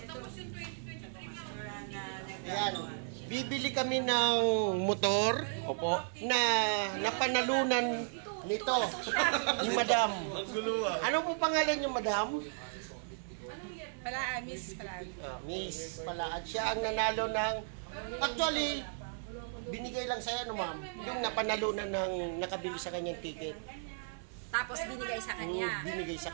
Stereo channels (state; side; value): silent; left; digital silence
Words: Ayan. Bibili kami ng motor. Opo. Na napanalunan nito. Yung madam. Ano po pangalan yung madam? Miss Palaan. Miss Palaan. Siya ang nanalo ng... Actually, binigay lang sa'yo, no ma'am? Yung napanalunan ng nakabili sa kanyang ticket. Tapos binigay sa kanya. Binigay sa